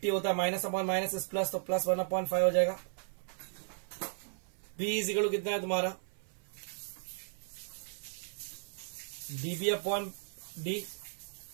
होता है, माइनस अपॉन माइनस इस प्लस, तो +1 अपॉन 5 हो जाएगा। B इज इक्वल टू कितना है तुम्हारा? DB अपॉन D,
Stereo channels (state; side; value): silent; left; 54 dB below the other